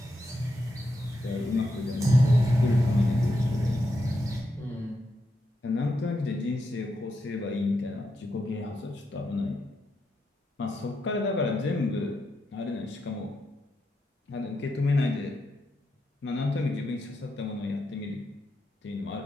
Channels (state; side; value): normal; both; correlation 0.84